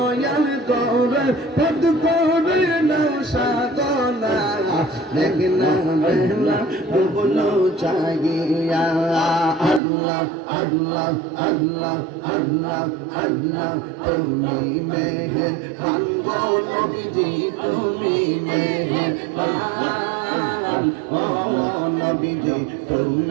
করে, পদ করে না সাধনা। দেখনা বেলা ডুবল চাগিয়া। আল্লাহ আল্লাহ আল্লাহ আল্লাহ আল্লাহ। তুমি মেহের বাঙ্গো নবীজি, তুমি মেহের বান ও নবীজি,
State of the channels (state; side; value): drops out; left; at 9.8 s